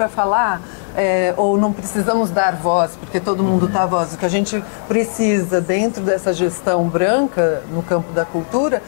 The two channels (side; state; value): right; silent; digital silence